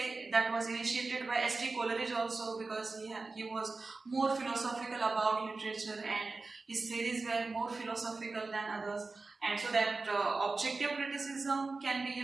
that was initiated by S.T. Coleridge also, because he was more philosophical about literature and his theories were more philosophical than others. And so that objective criticism can be,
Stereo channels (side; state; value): left; quieter; 3.7 dB